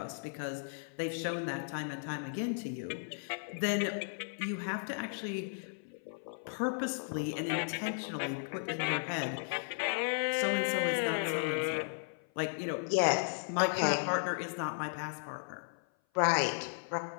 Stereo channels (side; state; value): right; silent; 54 dB below the other